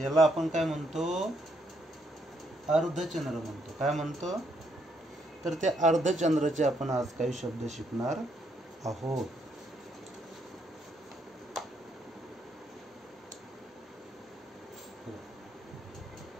याला आपण काय म्हणतो? अर्धचंद्र म्हणतो. काय म्हणतो? तर त्या अर्धचंद्राचे आपण आज काही शब्द शिकणार आहोत.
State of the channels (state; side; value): normal; both; correlation 0.74